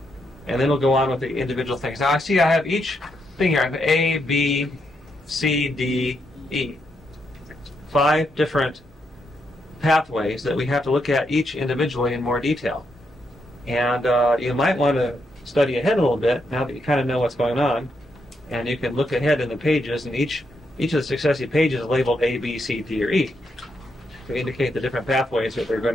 and then we'll go on with the individual things. Now I see I have each thing here. I have A, B, C, D, E. 5 different pathways that we have to look at each individually in more detail. And you might want to study ahead a little bit now that you kind of know what's going on. And you can look ahead in the pages, and each of the successive pages is labeled A, B, C, D, or E to indicate the different pathways that we're going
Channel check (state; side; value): normal; both; correlation 0.80